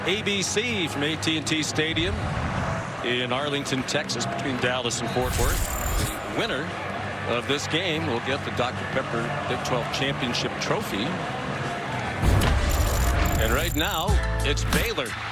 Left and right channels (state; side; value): identical; both; correlation 1.00